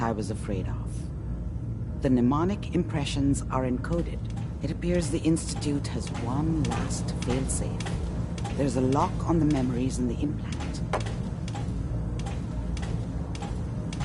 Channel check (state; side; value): identical; both; correlation 1.00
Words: I was afraid of. The mnemonic impressions are encoded. It appears the Institute has one last failsafe. There's a lock on the memories in the implant.